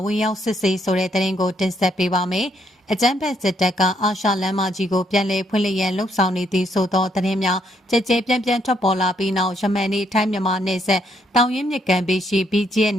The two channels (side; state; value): both; normal; correlation 0.73